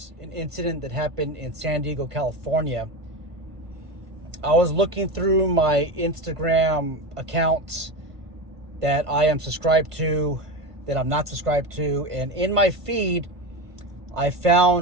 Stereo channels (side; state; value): left; late; 1.5 ms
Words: an incident that happened in San Diego, California. I was looking through my Instagram accounts that I am subscribed to, that I'm not subscribed to, and in my feed, I